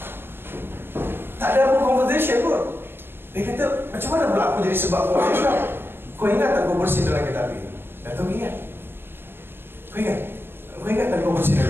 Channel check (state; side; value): late; left; 0.10 ms